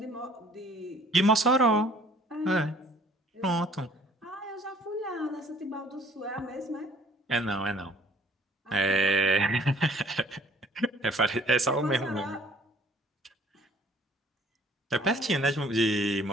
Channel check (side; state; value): both; normal; correlation 0.56